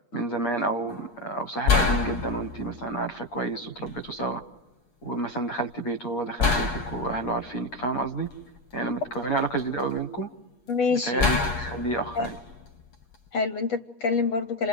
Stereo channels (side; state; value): right; late; 8.4 ms